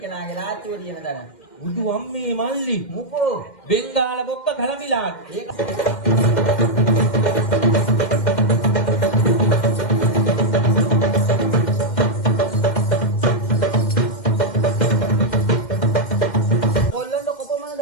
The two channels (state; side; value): late; right; 2.1 ms